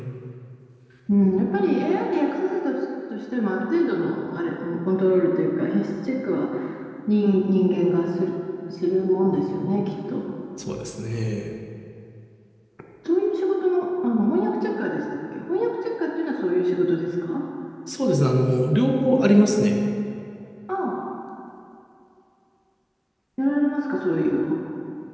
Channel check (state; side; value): identical; both; correlation 1.00